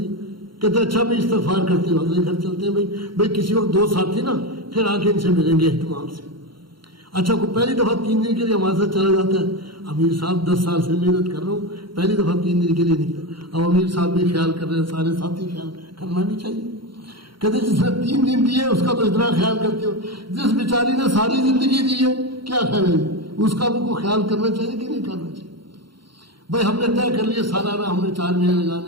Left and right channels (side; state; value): left; late; 0.73 ms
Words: کہتے ہیں اچھا میں استغفار کرتے ہوں, اگلے گھر چلتے ہیں, بھائی کسی وقت 2 ساتھی نا پھر آ کے ان سے ملیں گے اہتمام سے. اچھا کو پہلی دفعہ 3 دن کے لیے ہمارے ساتھ چلا جاتا ہے, امیر صاحب 10 سال سے محنت کر رہا ہوں, پہلی دفعہ 3 دن کے لیے نکلا. اب امیر صاحب بھی خیال کر رہے ہیں, سارے ساتھی خیال کرنا بھی چاہیے. کہتے جس نے 3 دن دیے اس کا تو اتنا خیال کرتے ہو, جس بیچاری نے ساری زندگی دی ہے کیا خیال ہے, اس کا بھی کو خیال کرنا چاہیے کہ نہیں کرنا چاہیے. بھائی ہم نے طے کر لیے سالانہ ہم نے 4 مہینے